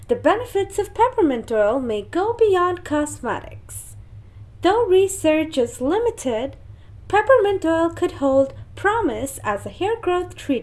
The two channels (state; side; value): identical; both; correlation 1.00